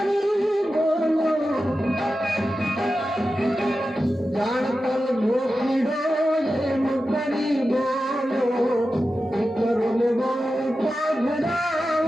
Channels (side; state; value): both; normal; correlation 0.92